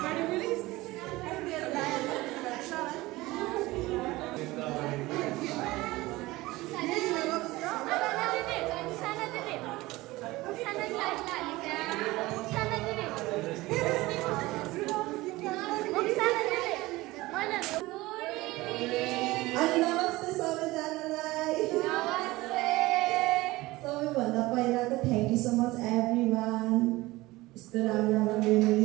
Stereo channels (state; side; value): quieter; left; 19.6 dB